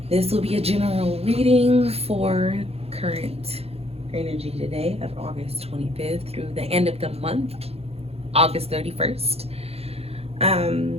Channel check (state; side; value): late; left; 0.29 ms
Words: This will be a general reading for current energy today of August 25th through the end of the month, August 31st.